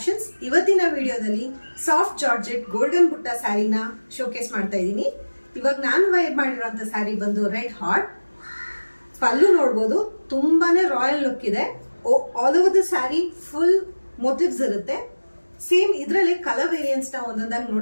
ಇವತ್ತಿನ ವಿಡಿಯೋದಲ್ಲಿ ಸಾಫ್ಟ್ ಜಾರ್ಜೆಟ್ ಗೋಲ್ಡನ್ ಬುಟ್ಟ ಸ್ಯಾರಿನ ಶೋಕೇಸ್ ಮಾಡ್ತಾ ಇದ್ದೀನಿ. ಇವಾಗ ನಾನು ವೇರ್ ಮಾಡಿರೋಂಥ ಸ್ಯಾರಿ ಬಂದು ರೆಡ್ ಹಾಟ್. ಪಲ್ಲು ನೋಡ್ಬೋದು, ತುಂಬಾನೇ ರಾಯಲ್ ಲುಕ್ ಇದೆ. All over the sari full motives ಇರುತ್ತೆ. ಸೇಮ್ ಇದರಲ್ಲಿ ಕಲರ್ ವೇರಿಯನ್ಸ್ ನ ಒಂದೊಂದಾಗಿ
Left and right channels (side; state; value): both; inverted; correlation -1.00